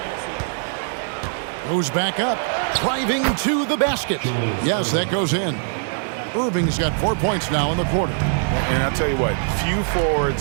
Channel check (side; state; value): left; silent; 64 dB below the other